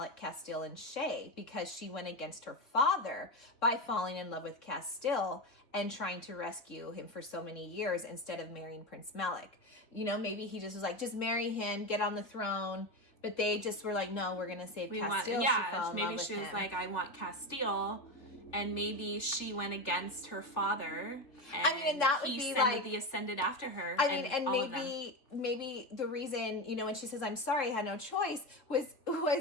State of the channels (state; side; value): late; right; 3.4 ms